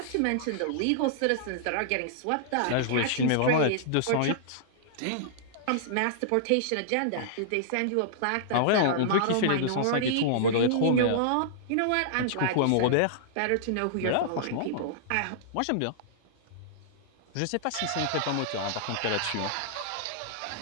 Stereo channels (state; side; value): different; both; correlation -0.02